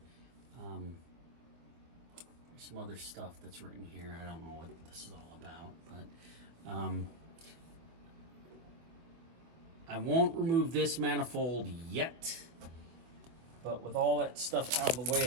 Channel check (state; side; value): late; left; 24 ms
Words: There's some other stuff that's written here. I don't know what this is all about, but I won't remove this manifold yet, but with all that stuff out of the